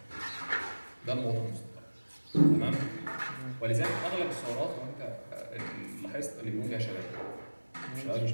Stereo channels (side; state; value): both; inverted; correlation -1.00